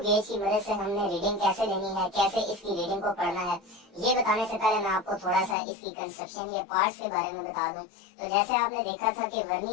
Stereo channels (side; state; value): right; drops out; at 5.6 s